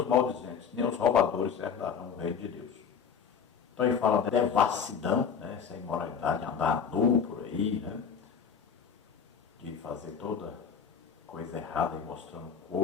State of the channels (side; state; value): right; quieter; 6.9 dB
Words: maldizentes, nem os roubadores herdarão o reino de Deus. Então ele fala da devassidão, né, essa imoralidade, andar nu por aí, né, de fazer toda coisa errada e mostrando o